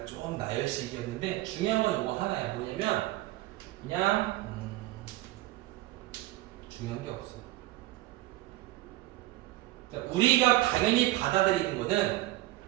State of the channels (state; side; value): quieter; left; 17.3 dB